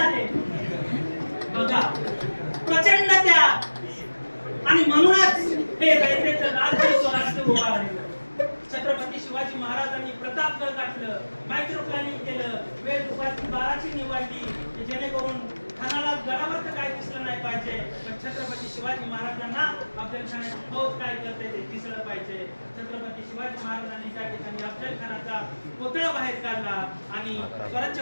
बघा, प्रचंड त्याग. आणि म्हणूनच हे रयतेचं राज्य स्वराज्य उभा राहिलं. छत्रपती शिवाजी महाराजांनी प्रतापगड गाठलं, मायक्रो प्लॅनिंग केलं, वेळ दुपारची 12ची निवडली, जेणेकरून खानाला गडावर तर काय दिसलं नाही पाहिजे, पण छत्रपती शिवाजी महाराजांना अफजल खानाची फौज काय करते ते दिसलं पाहिजे. छत्रपती शिवाजी महाराजांनी त्या ठिकाणी अफजल खानाचा कोतळा बाहेर काढला आणि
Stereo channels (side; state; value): both; inverted; correlation -1.00